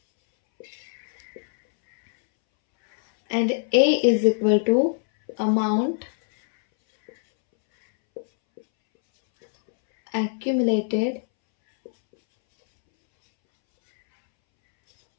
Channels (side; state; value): right; silent; 64 dB below the other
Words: And A is equal to amount accumulated